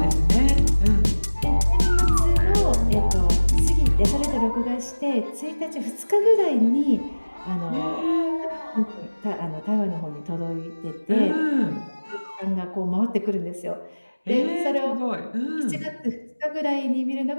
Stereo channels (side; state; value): both; inverted; correlation -1.00